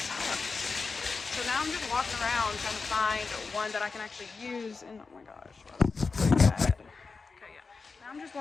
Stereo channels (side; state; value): right; quieter; 4.5 dB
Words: So now I'm just walking around trying to find one that I can actually use, and oh my gosh, bad. Okay, yeah. Now I'm just